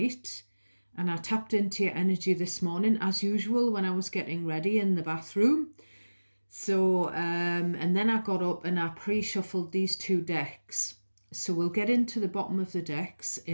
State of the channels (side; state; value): both; inverted; correlation -1.00